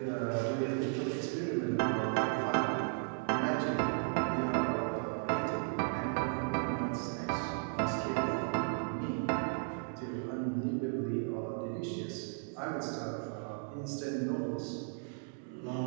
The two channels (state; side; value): silent; left; 54 dB below the other